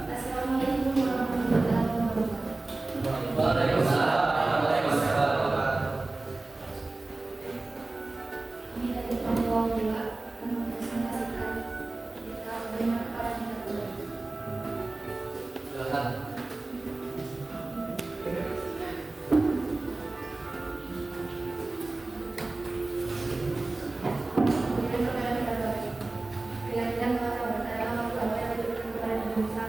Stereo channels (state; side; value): quieter; left; 3.1 dB